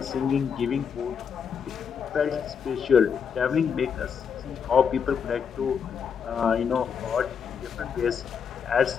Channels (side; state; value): right; quieter; 6.9 dB